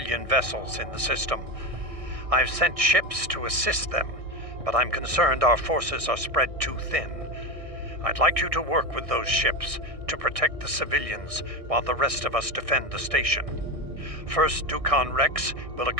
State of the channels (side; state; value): left; late; 1.6 ms